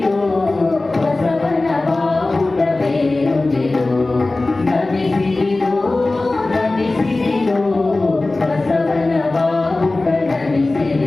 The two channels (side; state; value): right; quieter; 3.1 dB